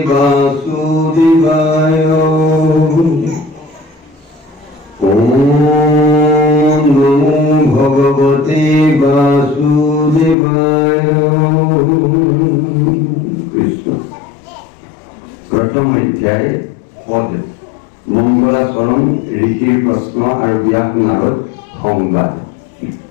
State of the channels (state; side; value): drops out; right; at 10.4 s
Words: বাসুদেবায়। ওম নমো ভগবতে বাসুদেবায়। কৃষ্ণ। প্ৰথম অধ্যায় পদ মঙ্গলাচৰণ ঋষিৰ প্ৰশ্ন আৰু ব্যাস নাৰদ সংবাদ।